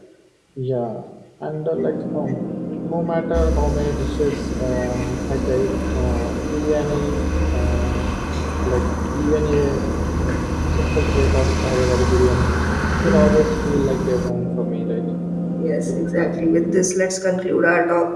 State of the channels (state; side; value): identical; both; correlation 1.00